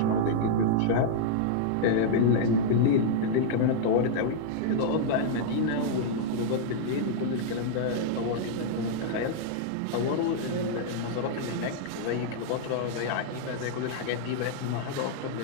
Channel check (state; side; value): different; both; correlation -0.01